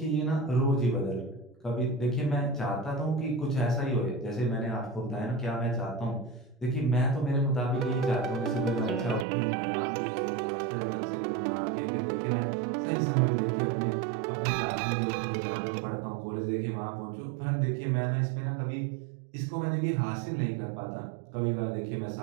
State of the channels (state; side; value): drops out; left; at 9.2 s